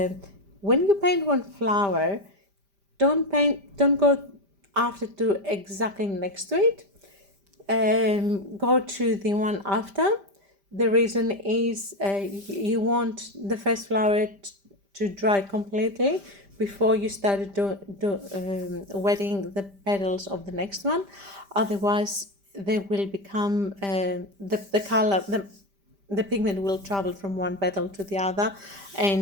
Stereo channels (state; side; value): late; left; 5.1 ms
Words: you paint one flower, don't go after to exactly next to it. Go to the one after. The reason is you want the first flower to dry completely before you start wetting the petals of the next one. Otherwise, they will become the color. the pigment will travel from one petal to the other,